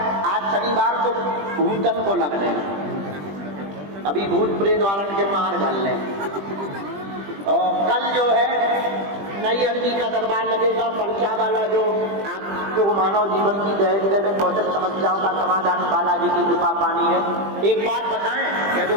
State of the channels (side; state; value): left; late; 20 ms